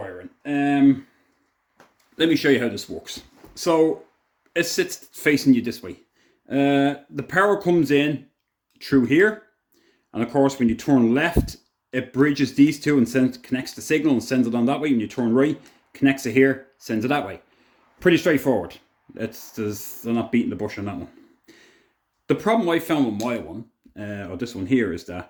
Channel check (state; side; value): identical; both; correlation 1.00